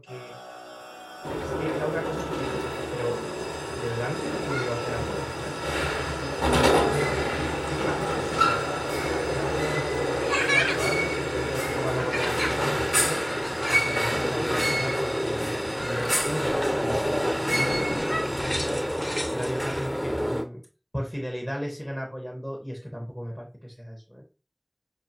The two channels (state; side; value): identical; both; correlation 1.00